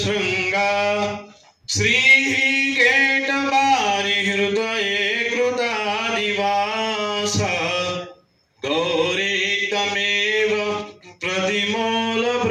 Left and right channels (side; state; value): both; identical; correlation 1.00